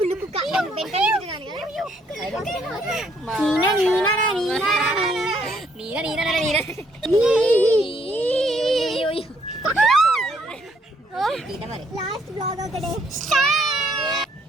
Last vlog of the day.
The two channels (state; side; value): normal; both; correlation 0.69